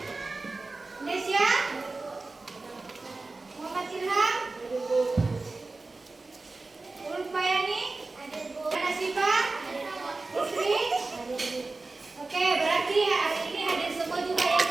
Nesya, Muhammad Ilham, Ulfayani, Ana Siva, Putri. Oke, berarti hari ini hadir semua juga ya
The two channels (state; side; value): quieter; left; 3.5 dB